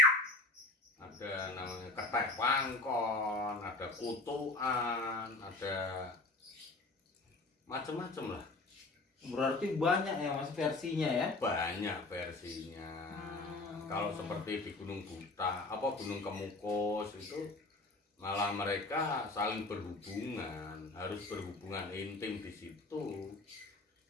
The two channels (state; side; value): quieter; right; 3.1 dB